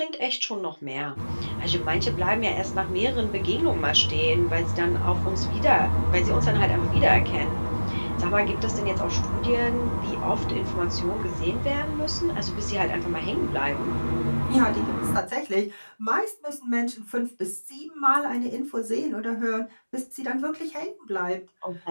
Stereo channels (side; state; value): both; inverted; correlation -1.00